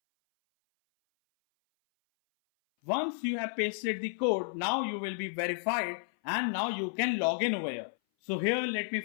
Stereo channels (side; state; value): right; silent; 57 dB below the other